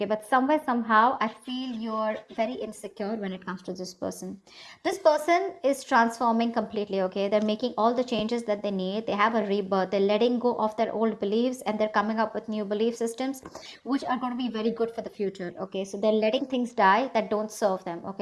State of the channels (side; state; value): both; identical; correlation 1.00